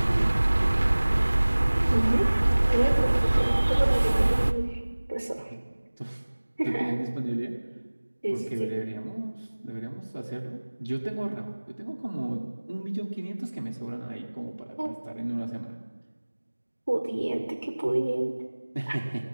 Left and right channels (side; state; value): both; inverted; correlation -1.00